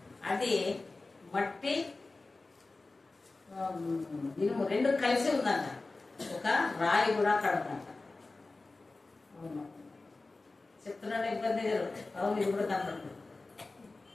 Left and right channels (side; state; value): right; quieter; 3.4 dB